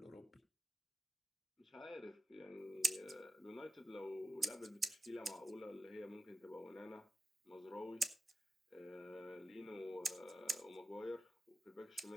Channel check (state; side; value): normal; both; correlation 0.93